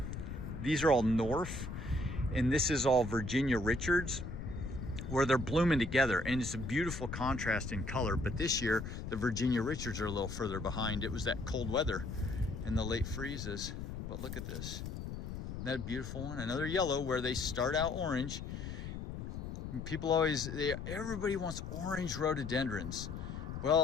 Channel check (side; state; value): left; noise; rumble, 7 dB below the sound